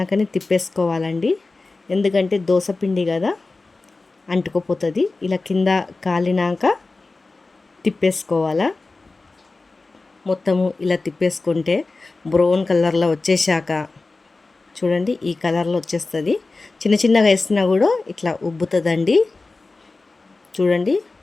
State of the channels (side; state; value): right; quieter; 3.5 dB